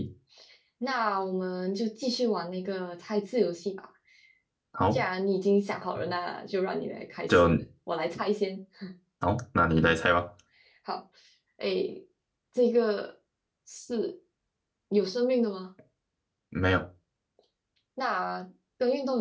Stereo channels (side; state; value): both; identical; correlation 1.00